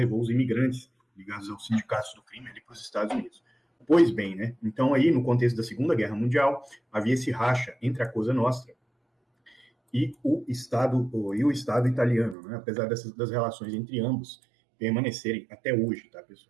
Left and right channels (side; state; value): left; drops out; at 12.4 s